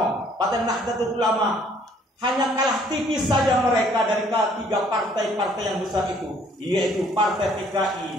Partai Nahdlatul Ulama, hanya kalah tipis saja mereka dari tiga partai-partai yang besar itu, yaitu Partai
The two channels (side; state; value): both; normal; correlation 0.61